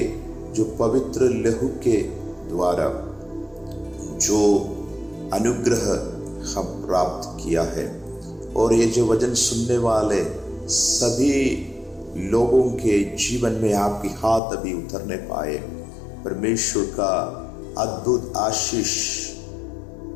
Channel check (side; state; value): right; drops out; at 14.4 s